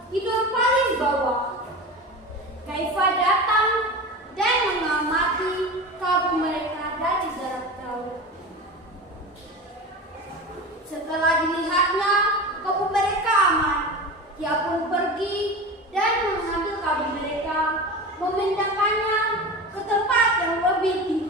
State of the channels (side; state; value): both; normal; correlation 0.29